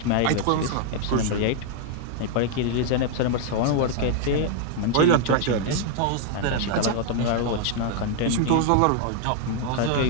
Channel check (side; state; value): both; different; correlation 0.00